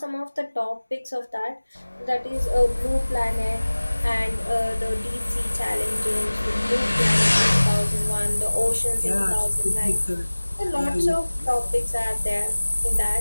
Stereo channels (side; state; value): both; inverted; correlation -1.00